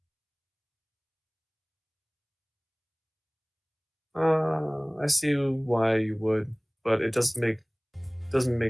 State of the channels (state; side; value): identical; both; correlation 1.00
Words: I see why you would, but it doesn't